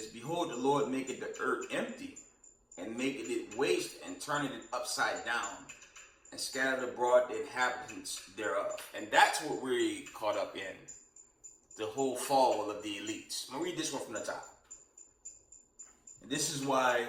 behold, the Lord maketh the earth empty, and maketh it waste, and turneth it upside down, and scattered abroad the inhabitants thereof. And that's what we're caught up in. The whole fall of the elites. I'm going to read this one from the top. And this is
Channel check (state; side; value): identical; both; correlation 1.00